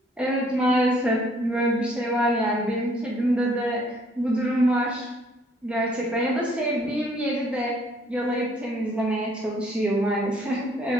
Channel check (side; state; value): both; normal; correlation 0.62